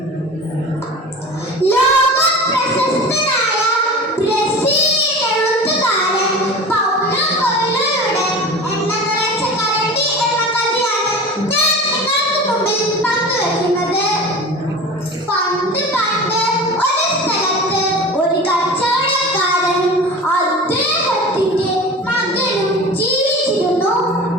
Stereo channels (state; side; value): normal; both; correlation 0.34